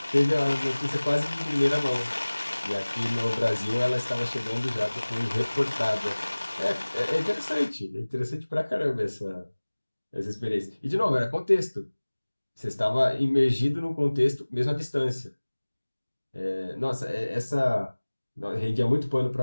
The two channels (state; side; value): inverted; both; correlation -1.00